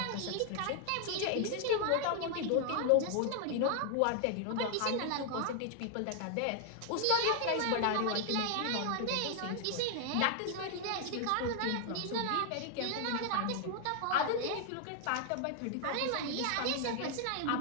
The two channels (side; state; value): both; different; correlation 0.00